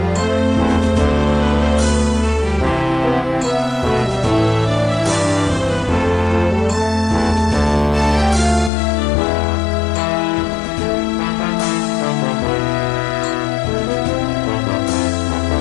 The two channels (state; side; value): drops out; right; at 8.7 s